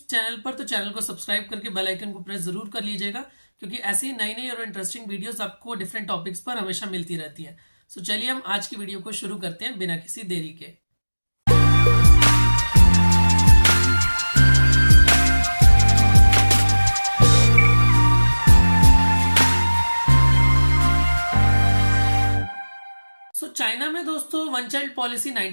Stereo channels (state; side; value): inverted; both; correlation -1.00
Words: चैनल पर तो चैनल को सब्सक्राइब करके बेल आइकन को प्रेस जरूर कर लीजिएगा, क्योंकि ऐसी नई नई और इंटरेस्टिंग वीडियोस आपको डिफरेंट टॉपिक्स पर हमेशा मिलती रहती है। चलिए हम आज की वीडियो को शुरू करते हैं बिना किसी देरी के। चाइना में दोस्तों वन चाइल्ड पॉलिसी